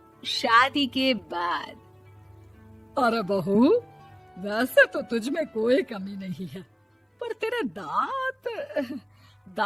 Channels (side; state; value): both; identical; correlation 1.00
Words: शादी के बाद। अरे बहू, वैसे तो तुझ में कोई कमी नहीं है, पर तेरे दांत